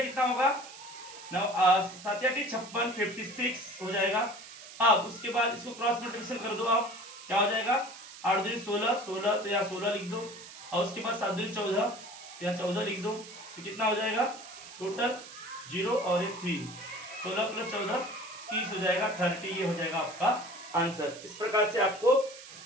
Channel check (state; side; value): noise; right; hiss, 16 dB below the sound